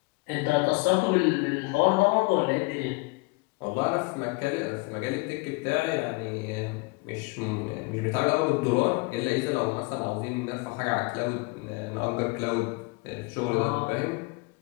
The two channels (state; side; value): quieter; right; 26.8 dB